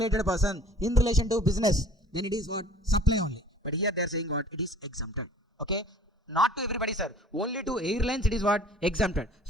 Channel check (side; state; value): both; normal; correlation 0.50